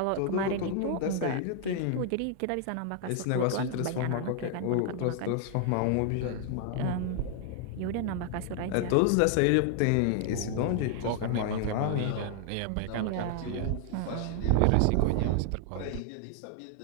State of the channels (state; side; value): different; both; correlation 0.00